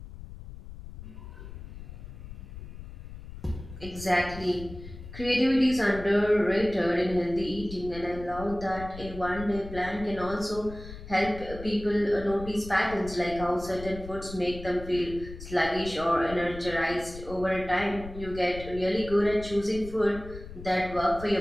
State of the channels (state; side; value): noise; left; rumble, 13 dB below the sound